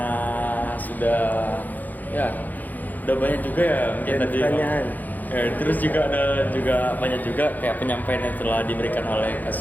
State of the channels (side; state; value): right; late; 0.083 ms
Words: udah banyak juga ya mungkin Dan tadi. pertanyaan. Terus juga ada banyak juga kayak penyampaian yang telah diberikan oleh